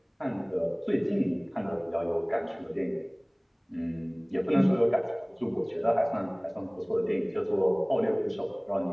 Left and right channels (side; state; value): both; identical; correlation 1.00